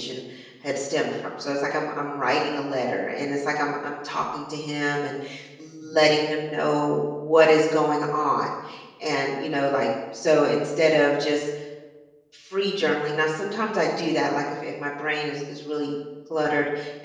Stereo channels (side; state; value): both; identical; correlation 1.00